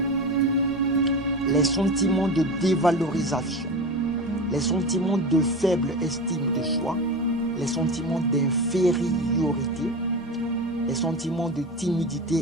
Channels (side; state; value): both; normal; correlation 0.26